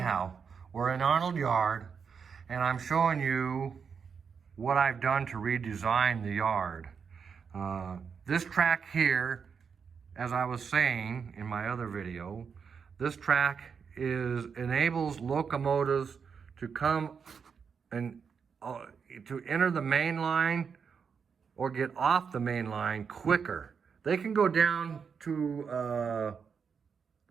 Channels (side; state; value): left; quieter; 6.3 dB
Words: we're in Arnold Yard, and I'm showing you what I've done to redesign the yard. This track here, as I was saying in my other video, this track enables locomotives to come and to enter the main line or get off the main line quicker. They can go down to